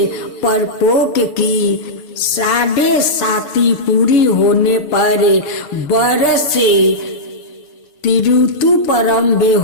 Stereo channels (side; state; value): right; late; 6.6 ms